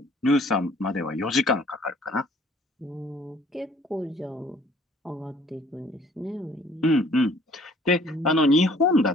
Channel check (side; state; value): both; normal; correlation 0.57